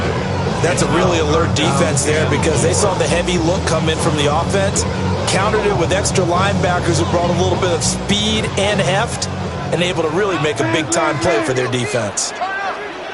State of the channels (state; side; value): identical; both; correlation 1.00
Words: That's a really alert defense there because they saw the heavy look come in from the offense, countered it with extra linebackers who brought a little bit of speed and heft, and able to really make a big-time play for their defense.